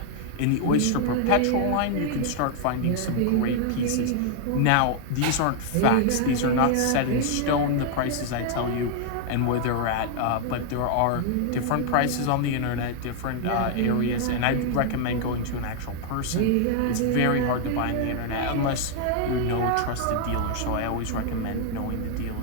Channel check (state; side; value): different; both; correlation 0.00